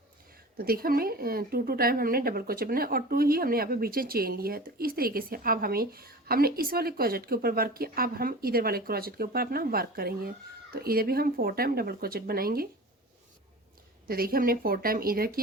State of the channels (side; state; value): both; normal; correlation 0.36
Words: तो देखिए हमने 2 टाइम हमने डबल क्रोचेट बनाया और 2 ही हमने यहाँ पे बीच में चेन लिया है। तो इस तरीके से अब हमने इस वाले क्रोचेट के ऊपर वर्क किया, अब हम इधर वाले क्रोचेट के ऊपर अपना वर्क करेंगे। तो इधर भी हम 4 टाइम डबल क्रोचेट बनाएंगे। तो देखिए हमने 4 टाइम इधर